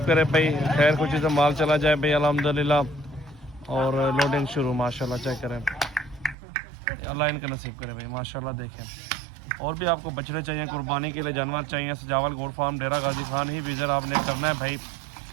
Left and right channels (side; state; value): left; drops out; at 6.4 s